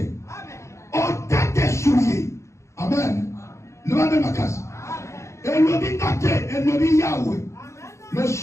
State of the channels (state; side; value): late; right; 0.14 ms